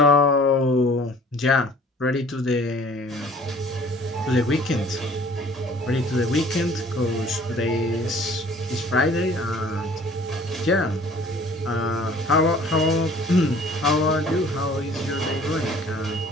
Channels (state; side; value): normal; both; correlation 0.52